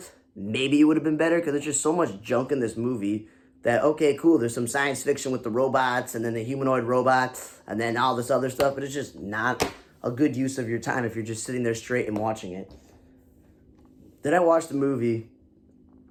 maybe it would have been better because there's just so much junk in this movie that, okay, cool, there's some science fiction with the robots and then the humanoid robots and then all this other stuff, but it's just not a good use of your time if you're just sitting there straight and watching it. Then I watched the movie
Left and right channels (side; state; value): both; identical; correlation 1.00